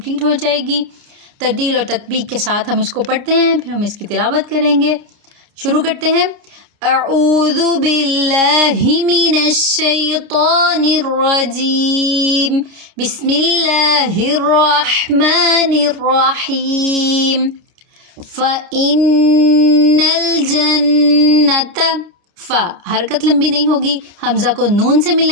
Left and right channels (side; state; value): left; late; 29 ms